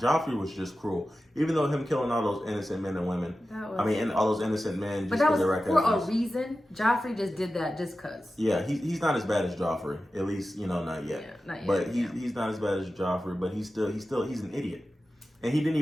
was just cruel. Even though him killing all those innocent men and women. And all those innocent men just because they're for a reason. Joffrey just did that just because. Yeah, he's not as bad as Joffrey. At least, not yet. Yeah, not yet. But he's not as bad as Joffrey, but he's an idiot. And he didn't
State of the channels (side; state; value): both; normal; correlation 0.94